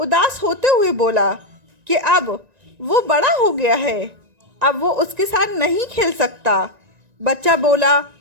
होते हुए बोला कि अब वो बड़ा हो गया है, अब वो उसके साथ नहीं खेल सकता। बच्चा बोला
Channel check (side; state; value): left; late; 1.9 ms